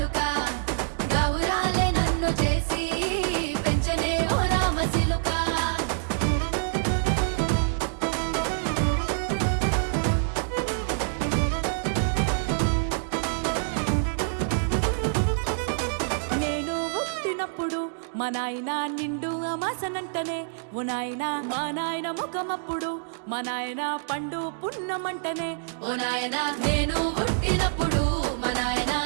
గౌరాలే నన్ను చేసి పెంచనే ఓ రామసిలుక నేను పుట్టినప్పుడు మా నాయన నిండు అమాసనంటనే ఓ నాయన మా నాయన ముఖమప్పుడు మా నాయన పండు పున్నమంటనే ఓ నాయన నేను పుట్టినప్పుడు మా నాయన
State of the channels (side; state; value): left; silent; digital silence